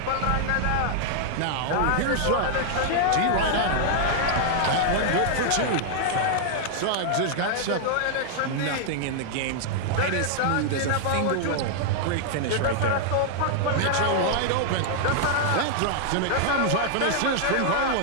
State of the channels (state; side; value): different; both; correlation -0.01